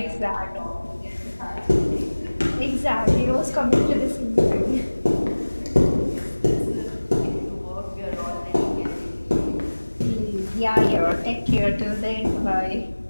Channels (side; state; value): both; inverted; correlation -1.00